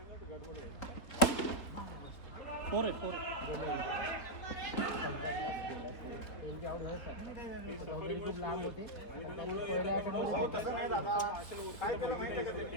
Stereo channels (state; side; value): late; right; 3.9 ms